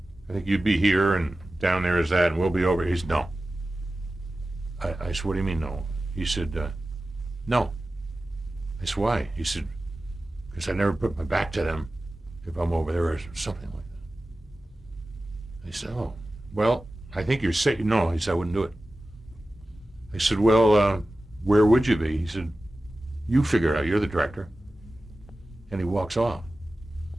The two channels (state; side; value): normal; both; correlation 0.95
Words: I think you'd be here, and down there is that, and we'll be over." He said, "No." I said, "What do you mean, no?" He said, "No." I said, "Why?" He said, "Because I never put my back to them if I'm over there," or something like that. I said, "Oh, well, I think you're safe." No, he said, "I wouldn't do it." I said, "Well, where would you be?" He said, "You figure it out. You're the director." And he walks off.